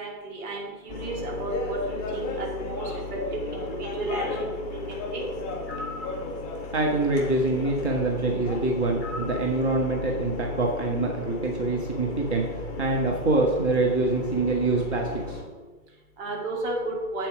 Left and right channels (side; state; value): right; late; 2.3 ms